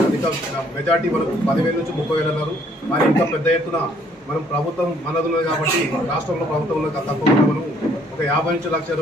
అధిక మెజార్టీ మనకు 10,000 నుంచి 30,000 అన్నారు. మరి ఇంకా పెద్ద ఎత్తున మనం ప్రభుత్వం మనది ఉన్నది కాబట్టి రాష్ట్రంలో ప్రభుత్వం ఉన్నది తప్పకుండా మనం ఒక 50 నుంచి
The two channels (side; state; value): both; normal; correlation 0.64